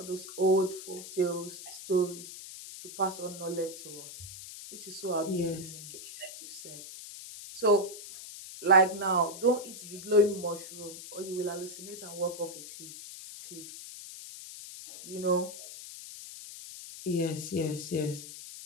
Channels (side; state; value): left; noise; hiss, 12 dB below the sound